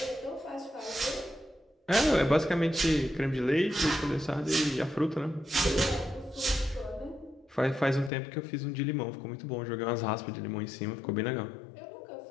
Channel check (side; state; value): right; drops out; at 8.1 s